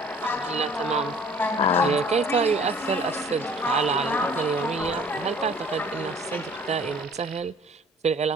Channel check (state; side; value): normal; both; correlation 0.52